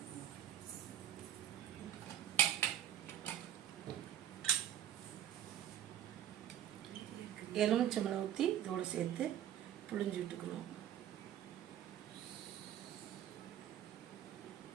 எலுமிச்சம்பழம் ஊற்றி இதோட சேர்த்து புழிஞ்சு விட்டுக்கணும்.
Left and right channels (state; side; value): quieter; left; 10.8 dB